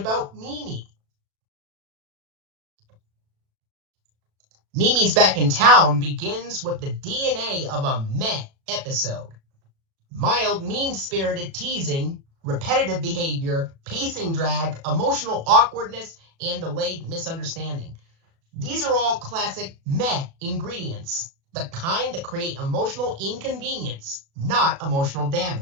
Mimi. Mimi's Back in Town begins with the DNA of a meh episode. Mild, mean-spirited teasing, repetitive behavior, pacing drag, emotional awkwardness, and delayed misunderstanding. These are all classic meh ingredients, the kind that create emotional inconvenience, not emotional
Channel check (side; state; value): left; late; 36 ms